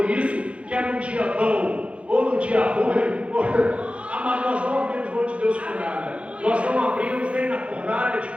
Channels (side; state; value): left; late; 0.061 ms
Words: isso, quer no dia bom ou no dia ruim, amado, nós não abrimos mão de Deus por nada. Nós não abrimos nem na fornalha de